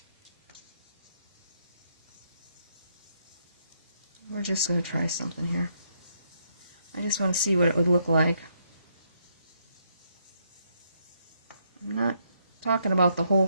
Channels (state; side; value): inverted; both; correlation -0.75